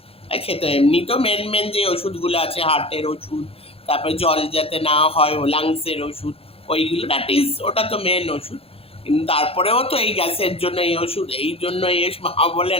খেতে। এমনি তো মেন যে ওষুধগুলো আছে, হার্টের ওষুধ, তারপরে জল যাতে না হয়, লাংসের ওষুধ, ওইগুলো ওটা তো মেন ওষুধ। কিন্তু তারপরেও তো এই গ্যাসের জন্য এই ওষুধ, এই জন্য মা বলে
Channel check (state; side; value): late; right; 0.28 ms